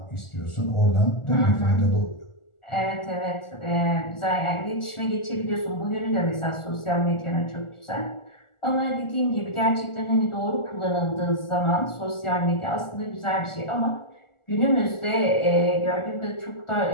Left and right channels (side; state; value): right; late; 1.4 ms